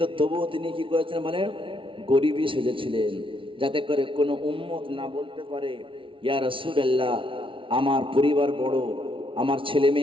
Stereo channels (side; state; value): left; late; 0.25 ms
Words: তবুও তিনি কি করেছেন মানে গরিবই সেজেছিলেন, যাতে করে কোনো উম্মত না বলতে পারে, ইয়া রাসূলুল্লাহ, আমার পরিবার বড়, আমার ছেলে